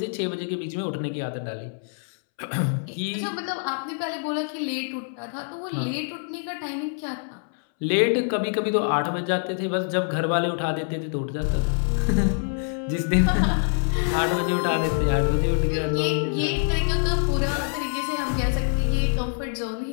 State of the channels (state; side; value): silent; right; 62 dB below the other